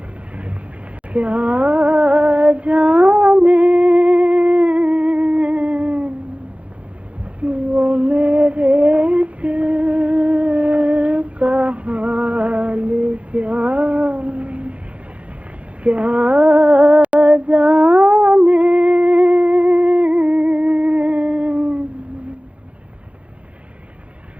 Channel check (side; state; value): left; late; 0.063 ms